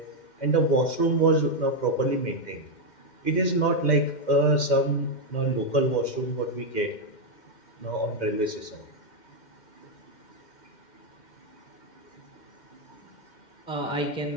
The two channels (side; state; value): right; late; 2.1 ms